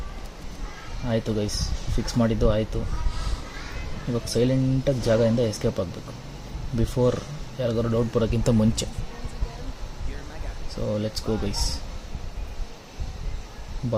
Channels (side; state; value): both; identical; correlation 1.00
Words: ಆಯಿತು ಗೈಸ್, ಫಿಕ್ಸ್ ಮಾಡಿದ್ದು ಆಯಿತು. ಇವಾಗ ಸೈಲೆಂಟಾಗಿ ಜಾಗದಿಂದ ಎಸ್ಕೇಪ್ ಆಗಬೇಕು ಬಿಫೋರ್ ಯಾರಿಗಾರು ಡೌಟ್ ಬರೋಕ್ಕಿಂತ ಮುಂಚೆ. So let's go guys.